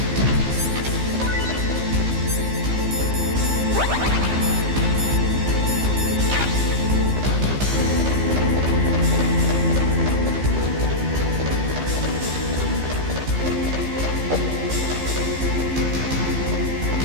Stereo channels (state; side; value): late; left; 15 ms